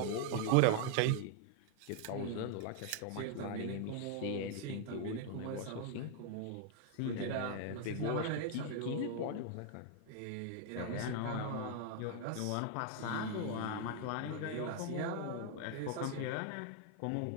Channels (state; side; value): different; both; correlation 0.00